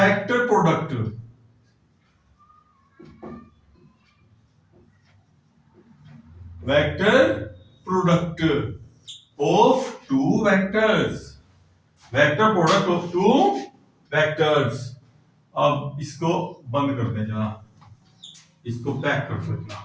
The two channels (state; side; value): identical; both; correlation 1.00